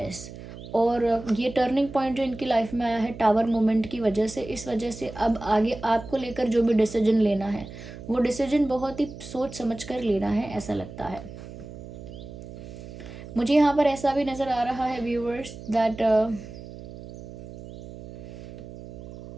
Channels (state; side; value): noise; right; hum, 13 dB below the sound